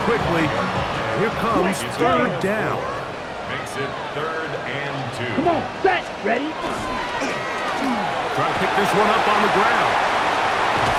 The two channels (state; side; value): identical; both; correlation 1.00